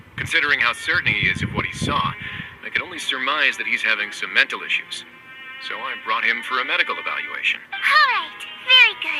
Considering how certain he is of what he saw, I can only surmise that he's having some mental issues. So I brought him for a medical evaluation. All right. Very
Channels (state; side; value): identical; both; correlation 1.00